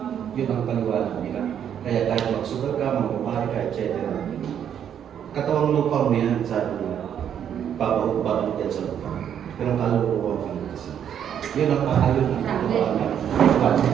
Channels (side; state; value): left; quieter; 9.1 dB